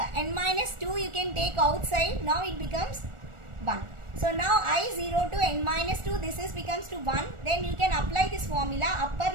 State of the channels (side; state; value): left; late; 1.4 ms